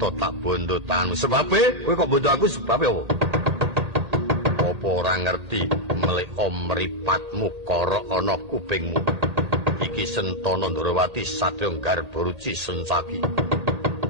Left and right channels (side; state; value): left; late; 1.8 ms